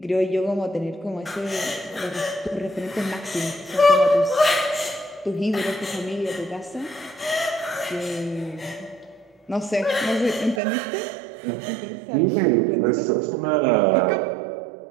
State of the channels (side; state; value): left; drops out; at 10.6 s